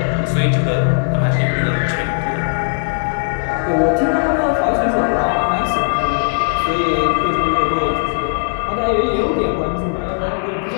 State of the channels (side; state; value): right; silent; digital silence